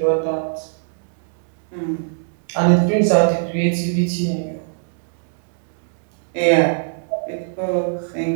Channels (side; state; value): left; silent; digital silence